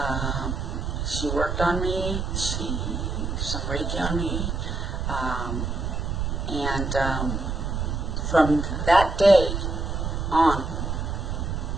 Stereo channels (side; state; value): right; noise; rumble, 2 dB below the sound